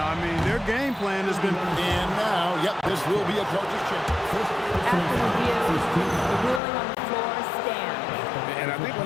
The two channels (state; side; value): drops out; right; at 6.6 s